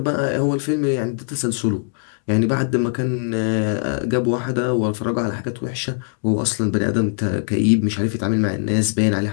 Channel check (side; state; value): right; silent; 65 dB below the other